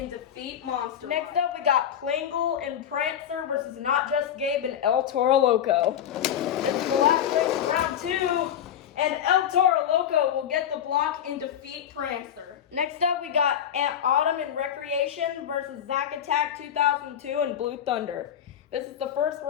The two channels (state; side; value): quieter; right; 9.6 dB